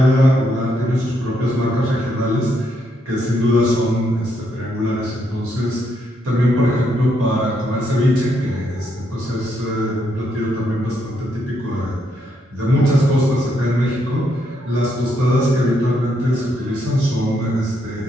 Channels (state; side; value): normal; both; correlation 0.76